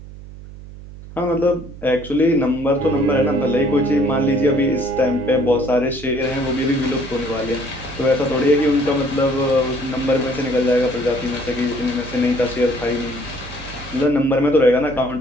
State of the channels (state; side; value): noise; right; hum, 15 dB below the sound